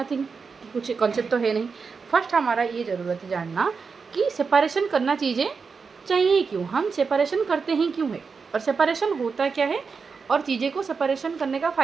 कुछ कॉन्सेप्ट तो है नहीं। फर्स्ट हमारा ये ज़रूरत है जानना कि सेपरेशन करना चीज़ें चाहिए क्यों, हम सेपरेशन करते हैं क्यों है, और सेपरेशन होता क्या है, और चीज़ें को सेपरेशन करने का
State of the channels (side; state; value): left; quieter; 5.2 dB